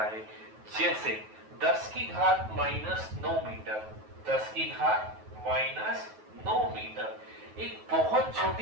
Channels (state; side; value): late; left; 9.3 ms